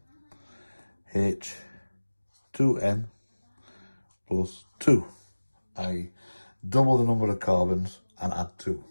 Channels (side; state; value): both; inverted; correlation -1.00